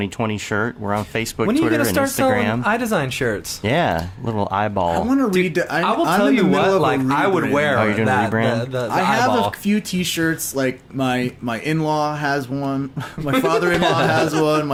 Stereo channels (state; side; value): identical; both; correlation 1.00